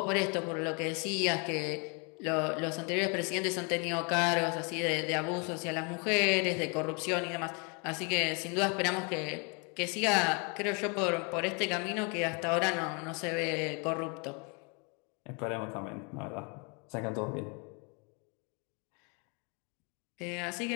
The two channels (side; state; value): right; quieter; 33.8 dB